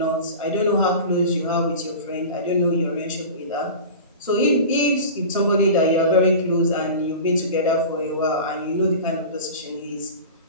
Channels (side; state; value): both; inverted; correlation -0.33